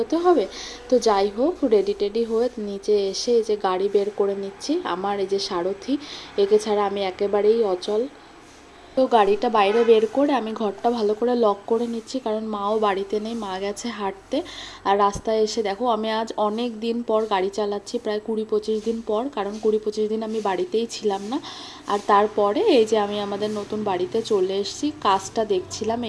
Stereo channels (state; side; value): identical; both; correlation 1.00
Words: হবে। তো যাই হোক, রেডি টেডি হয়ে নিচে এসে এই যে গাড়ি বের করে নিচ্ছি। আমার এই যে সারথি, একে ছাড়া আমি একেবারেই অচল। তো গাড়িটা বাইরে বের করে আমি ঘরটা ভালো করে লক করে নিচ্ছি, কারণ মাও বাড়িতে নেই, মা গেছে হাঁটতে। আর রাস্তায় এসে দেখো আমি আজ অনেক দিন পর গাড়ি চালাচ্ছি, প্রায় 20-25 দিন পর, কারণ 20-25 দিন আমি বাড়িতেই ছিলাম না। আর তারপরে এই যে আমি আমাদের নতুন বাড়িতে চলে এসেছি, কাজটা দেখছিলাম